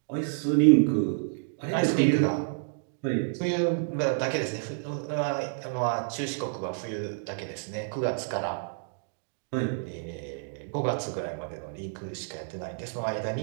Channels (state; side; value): silent; left; digital silence